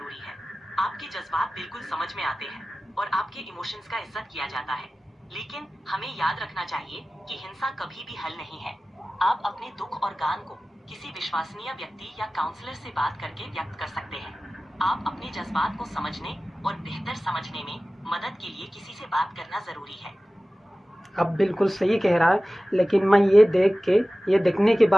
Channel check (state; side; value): normal; both; correlation 0.97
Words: है। आपके जज्बात बिल्कुल समझ में आते हैं और आपके इमोशंस का इज्जत किया जाता है। लेकिन हमें याद रखना चाहिए कि हिंसा कभी भी हल नहीं है। आप अपने दुख और गान को किसी विश्वसनीय व्यक्ति या काउंसलर से बात करके व्यक्त कर सकते हैं। आप अपने जज्बात को समझने और बेहतर समझने में मदद के लिए किसी से बात करना जरूरी है। अब बिल्कुल सही कह रहा है, लेकिन मैं ये देखने के